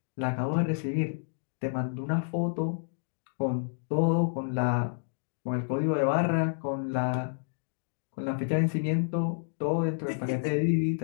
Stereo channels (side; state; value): right; silent; digital silence